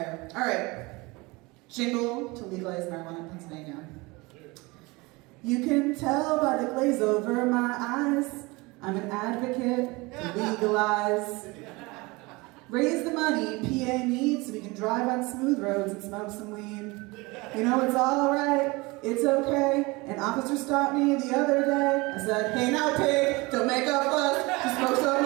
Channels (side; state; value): left; quieter; 24.3 dB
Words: All right. Jingle to legalize marijuana in Pennsylvania. You can tell by the glaze over my eyes, I'm an advocate to legalize. Raise the money PA needs so we can drive on smooth roads and smoke some weed. You know it's all right, it's okay. An officer stopped me the other day. I said, hey now pig, don't make a fuss. Just smoke some